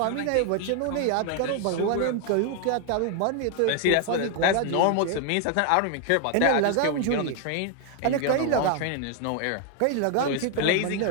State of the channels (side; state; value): both; different; correlation 0.00